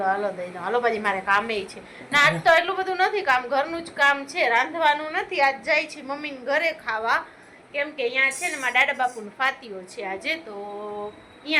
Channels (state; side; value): identical; both; correlation 1.00